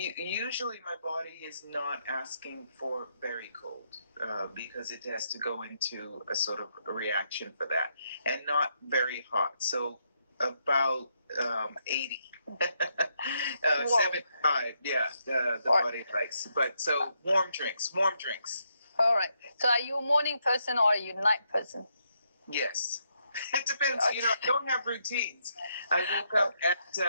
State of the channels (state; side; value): inverted; both; correlation -0.78